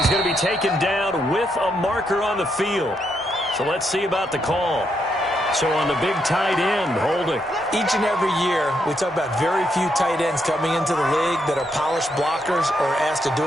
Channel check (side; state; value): both; normal; correlation 0.78